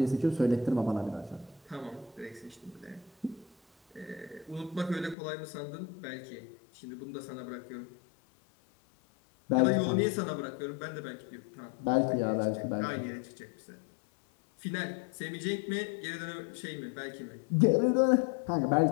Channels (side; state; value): right; drops out; at 5.2 s